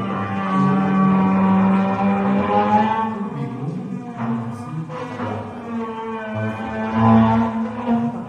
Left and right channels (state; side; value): identical; both; correlation 1.00